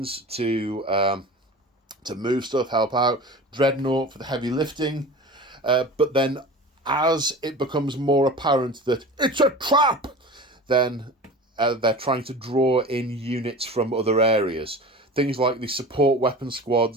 to move stuff, help out. Dreadnought for the heavy lifting. But then, as it becomes more apparent that it's a trap, then they're trying to draw in units from other areas. Things like the support weapon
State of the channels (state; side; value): normal; both; correlation 0.36